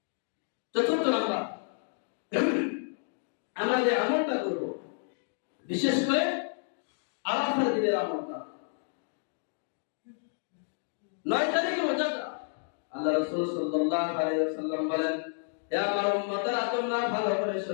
চতুর্থ নাম্বার, আমরা যে আমলটা করব, বিশেষ করে আরাফার দিনের আমলটা, 9 তারিখে রোজাটা আল্লাহ রাসূল সাল্লাল্লাহু আলাইহি ওয়াসাল্লাম বলেন, হে আমার উম্মতরা, তোমরা ভালো করে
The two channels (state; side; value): silent; right; digital silence